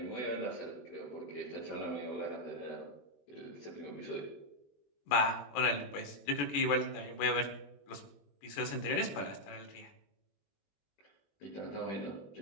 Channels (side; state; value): right; late; 21 ms